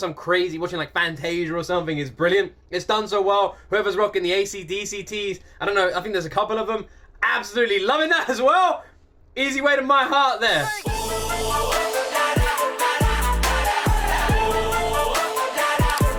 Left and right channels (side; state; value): both; identical; correlation 1.00